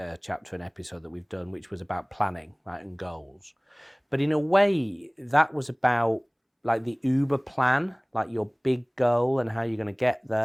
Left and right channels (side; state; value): both; identical; correlation 1.00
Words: and episode that we've done, which was about planning, right, and goals. But in a way, that was about like the Uber plan, like your big goal and how you're going to get